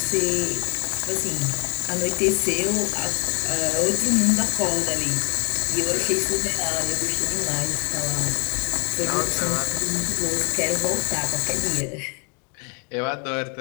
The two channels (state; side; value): quieter; right; 36.5 dB